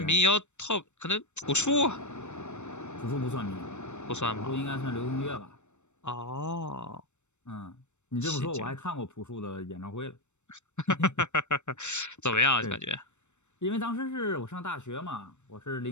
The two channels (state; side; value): late; right; 0.83 ms